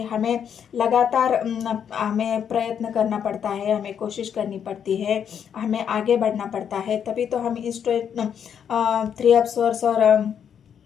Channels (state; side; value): quieter; right; 8.2 dB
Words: हमें लगातार हमें प्रयत्न करना पड़ता है, हमें कोशिश करनी पड़ती है, हमें आगे बढ़ना पड़ता है, तभी तो हम इस 3 ऑफ सोर्स और